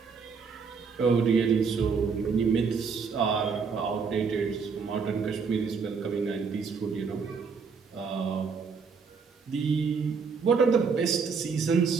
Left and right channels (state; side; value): quieter; left; 5.5 dB